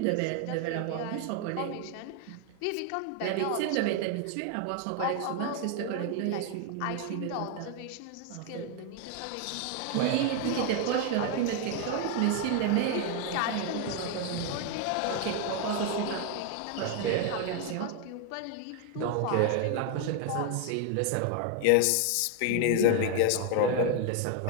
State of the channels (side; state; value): both; different; correlation 0.01